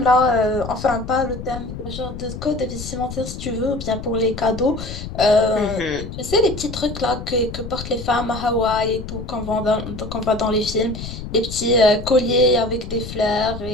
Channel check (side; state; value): left; noise; rumble, 9 dB below the sound